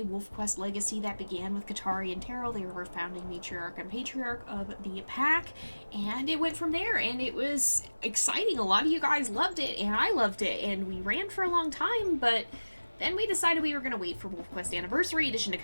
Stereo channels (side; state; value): both; inverted; correlation -1.00